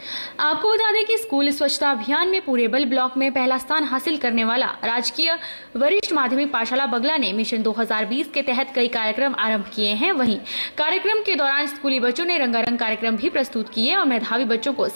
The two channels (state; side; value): inverted; both; correlation -1.00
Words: आपको बता दें कि स्कूल स्वच्छता अभियान में पूरेबल ब्लॉक में पहला स्थान हासिल करने वाला राजकीय वरिष्ठ माध्यमिक पाठशाला बगला ने मिशन 2020 के तहत कई कार्यक्रम आरंभ किए हैं। वहीं कार्यक्रम के दौरान स्कूली बच्चों ने रंगारंग कार्यक्रम भी प्रस्तुत किए और मेधावी बच्चों को